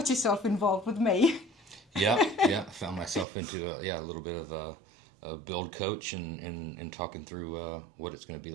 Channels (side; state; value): left; drops out; at 3.2 s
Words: yourself involved with me. Yeah, I found myself into a little bit of a build coach and talking through what it's going to be